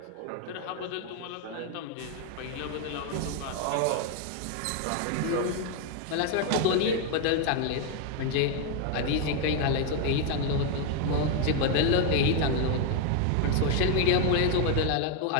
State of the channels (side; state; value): both; different; correlation 0.01